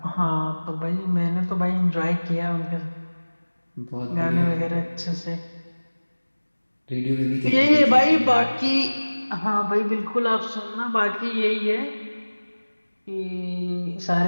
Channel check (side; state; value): both; inverted; correlation -1.00